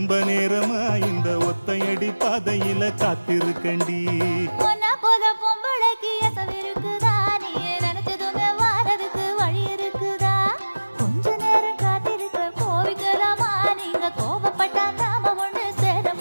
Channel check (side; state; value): both; inverted; correlation -1.00